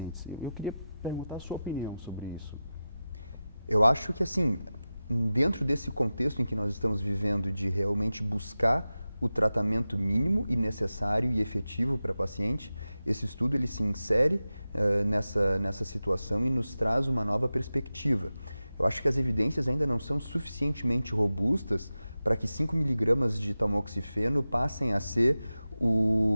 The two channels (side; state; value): both; inverted; correlation -0.94